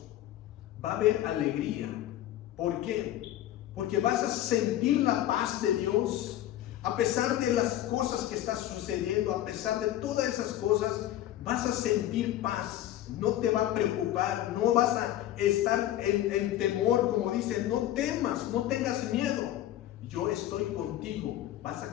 va a haber alegría. ¿Por qué? Porque vas a sentir la paz de Dios. A pesar de las cosas que están sucediendo, a pesar de todas esas cosas, vas a sentir paz. no te va a preocupar, no vas a estar en temor, como dice, no temas, no tengas miedo. Yo estoy contigo. Vas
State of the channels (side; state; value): right; quieter; 13.1 dB